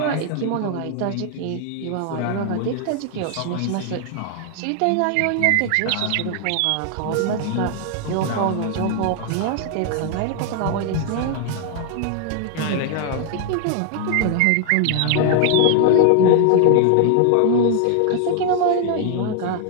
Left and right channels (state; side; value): different; both; correlation 0.00